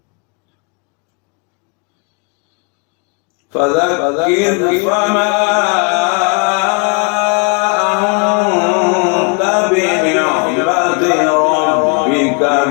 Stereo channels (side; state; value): right; quieter; 34.5 dB